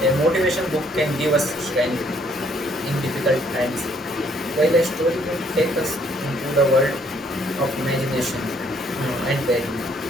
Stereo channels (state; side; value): normal; both; correlation 0.65